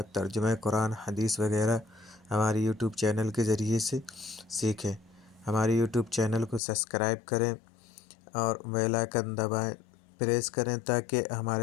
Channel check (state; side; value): drops out; right; at 6.6 s